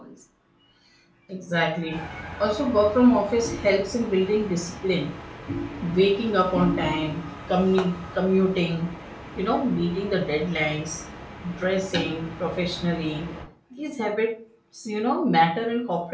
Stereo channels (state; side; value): identical; both; correlation 1.00